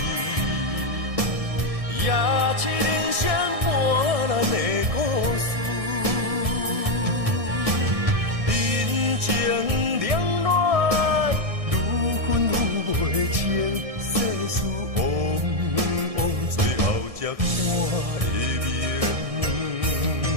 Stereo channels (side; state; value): left; late; 1.6 ms